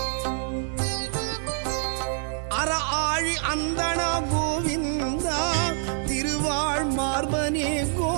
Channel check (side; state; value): left; silent; digital silence